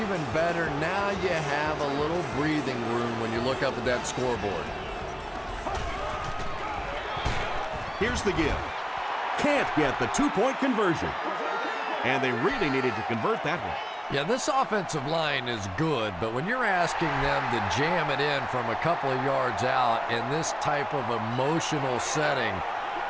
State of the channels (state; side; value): identical; both; correlation 1.00